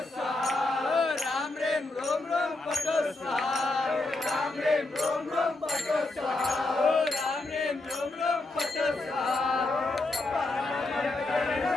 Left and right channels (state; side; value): quieter; right; 3.0 dB